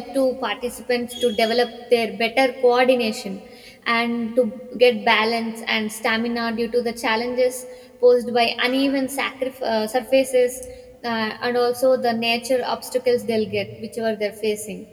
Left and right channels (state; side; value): identical; both; correlation 1.00